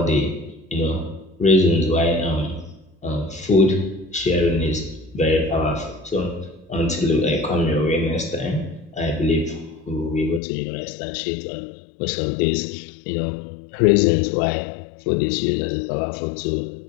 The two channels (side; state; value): right; drops out; at 10.4 s